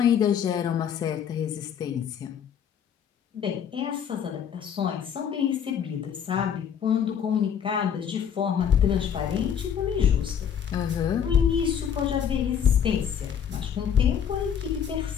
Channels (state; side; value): quieter; right; 8.2 dB